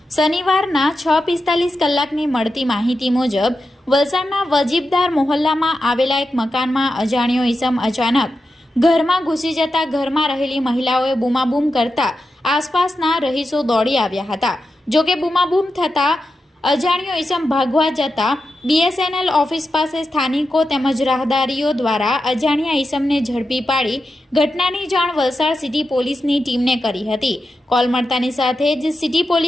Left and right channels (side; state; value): both; normal; correlation 0.89